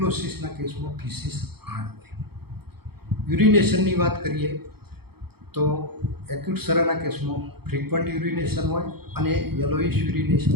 કેસમાં ફિસિસ હાર્ડ હોય. યુરિનેશનની વાત કરીએ તો એક્યુટ સરાના કેસમાં ફ્રીક્વન્ટ યુરિનેશન હોય અને યલોઇશ યુરિનેશન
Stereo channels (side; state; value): left; late; 0.96 ms